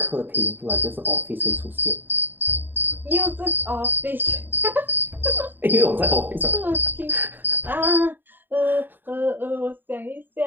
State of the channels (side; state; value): left; late; 0.093 ms